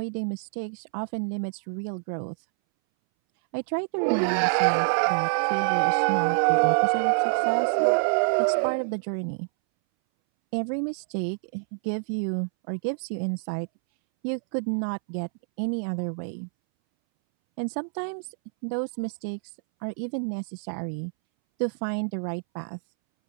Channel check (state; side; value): silent; left; 60 dB below the other